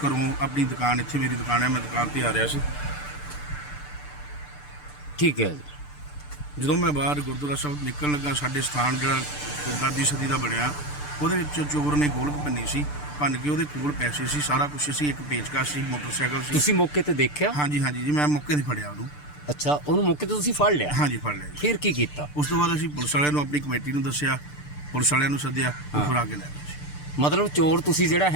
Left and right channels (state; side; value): late; right; 6.8 ms